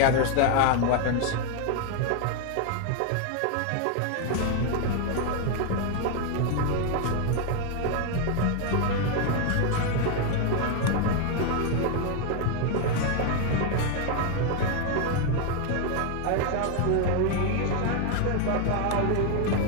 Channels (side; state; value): both; different; correlation 0.01